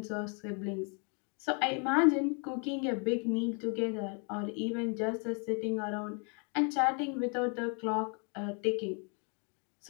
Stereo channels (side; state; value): right; quieter; 36.8 dB